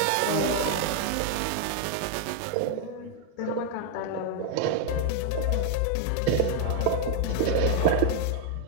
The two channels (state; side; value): different; both; correlation 0.00